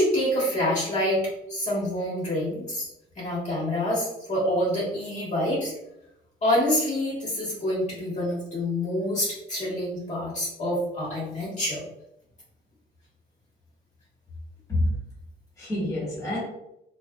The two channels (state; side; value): normal; both; correlation 0.45